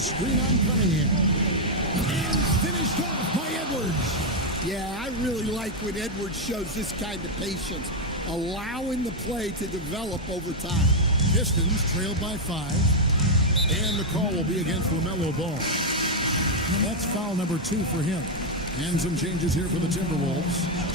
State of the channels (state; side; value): normal; both; correlation 0.01